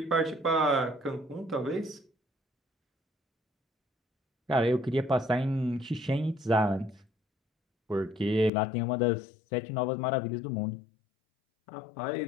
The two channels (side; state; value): right; drops out; at 8.5 s